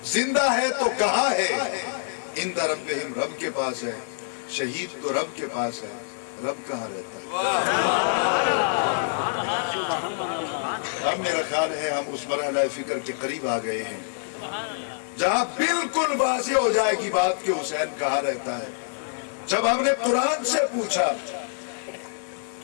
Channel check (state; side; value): silent; right; digital silence